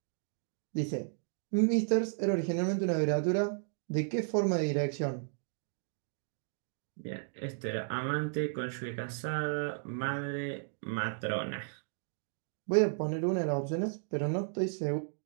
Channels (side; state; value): left; silent; digital silence